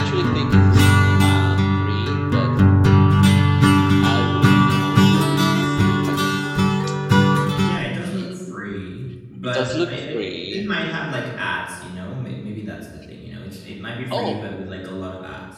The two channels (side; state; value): both; identical; correlation 1.00